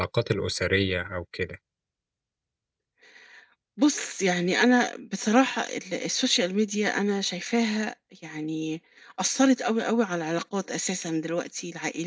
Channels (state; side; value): identical; both; correlation 1.00